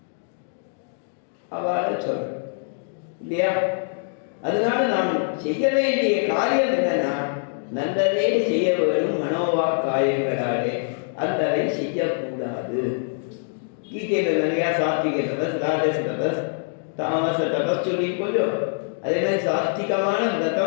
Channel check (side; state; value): right; silent; digital silence